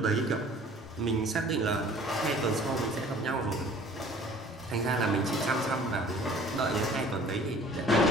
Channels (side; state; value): both; normal; correlation 0.50